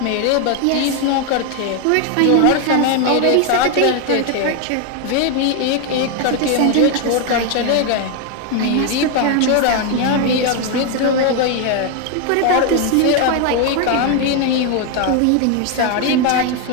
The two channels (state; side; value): different; both; correlation 0.01